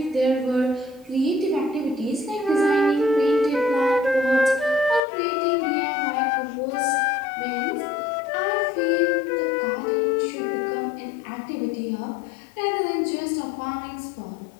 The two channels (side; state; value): right; drops out; at 5.0 s